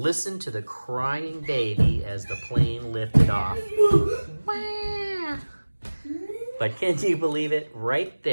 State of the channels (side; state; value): both; inverted; correlation -1.00